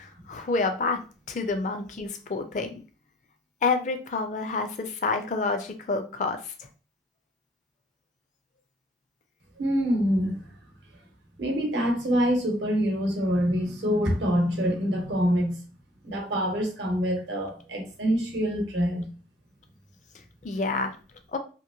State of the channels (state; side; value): normal; both; correlation 0.55